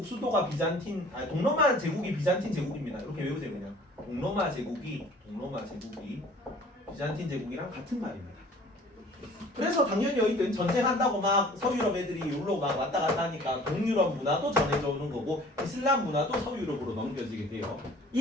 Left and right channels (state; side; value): normal; both; correlation 0.50